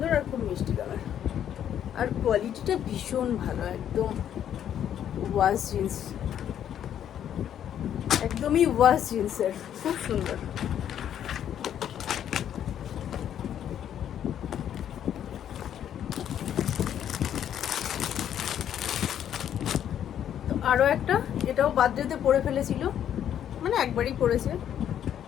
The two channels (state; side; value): quieter; right; 10.0 dB